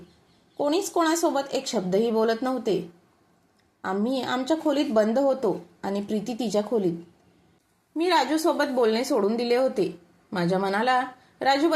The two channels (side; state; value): both; identical; correlation 1.00